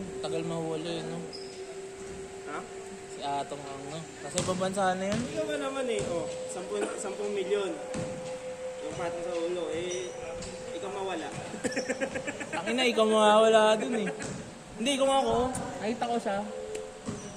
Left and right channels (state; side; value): identical; both; correlation 1.00